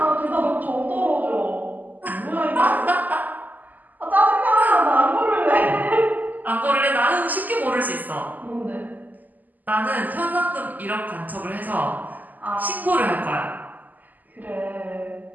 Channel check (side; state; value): left; late; 0.083 ms